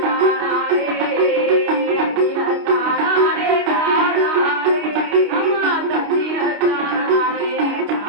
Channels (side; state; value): left; late; 29 ms